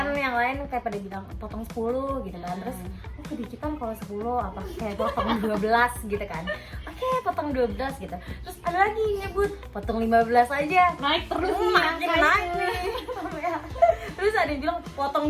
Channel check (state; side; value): identical; both; correlation 1.00